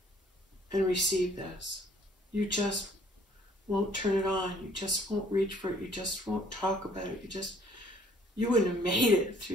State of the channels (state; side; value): normal; both; correlation 0.60